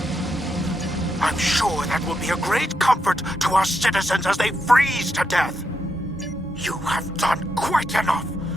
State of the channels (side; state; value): both; normal; correlation 0.82